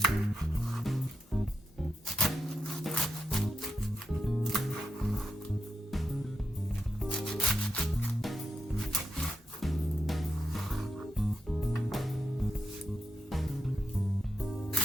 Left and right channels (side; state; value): both; normal; correlation 0.85